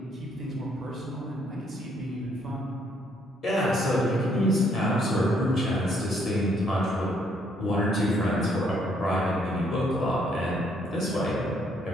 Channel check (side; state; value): both; normal; correlation 0.69